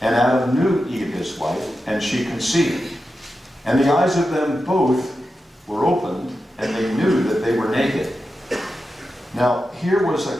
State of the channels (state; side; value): normal; both; correlation 0.90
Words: And Adam knew Eve his wife, and she conceived. And the eyes of them both were opened, and they knew that they were naked." Now, here was a